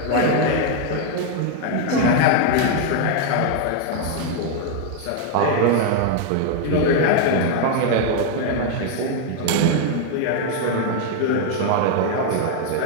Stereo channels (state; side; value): different; both; correlation 0.00